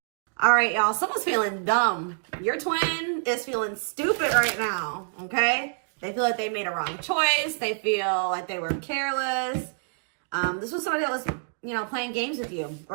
All right, y'all, someone's feeling dumb. Your twin is feeling stupid right now, okay? They feel like they made a wrong choice. They feel like they were careless. This was somebody that was, playing games with you,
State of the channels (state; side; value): silent; left; digital silence